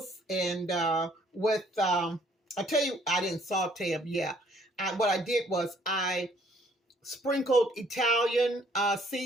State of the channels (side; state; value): both; normal; correlation 0.62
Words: and with, I'll tell you, I didn't saute them. Yeah, what I did was I sprinkled Italian